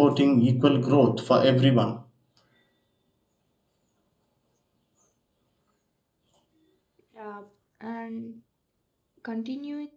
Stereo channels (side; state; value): both; identical; correlation 1.00